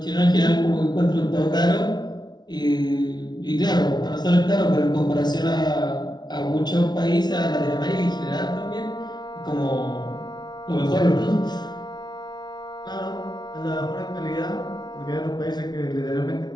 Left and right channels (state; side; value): late; right; 0.20 ms